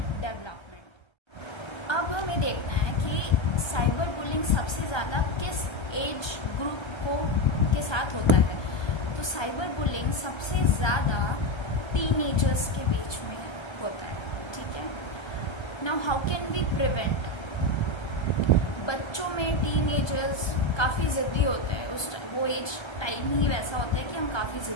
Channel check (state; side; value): late; right; 1.2 ms